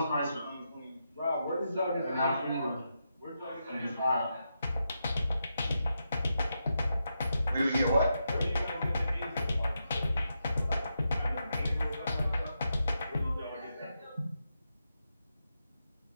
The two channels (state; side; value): inverted; both; correlation -0.85